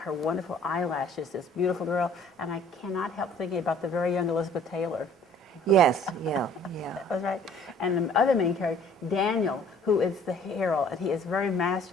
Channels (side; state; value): both; normal; correlation 0.54